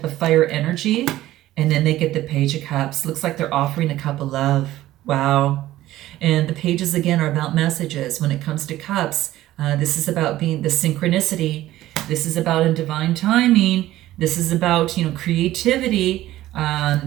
of fire energy. And then they get the Page of Cups. Looks like they're offering a cup of love. Wow. And the pages, again, are about messages. When it comes to cups, this is about being the synchronicity. This is about a divine timing. This is about, creativity.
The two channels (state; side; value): quieter; left; 15.0 dB